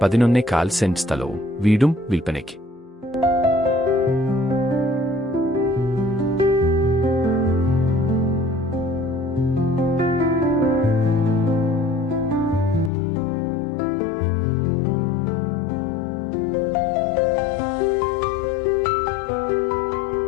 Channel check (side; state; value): right; drops out; at 12.9 s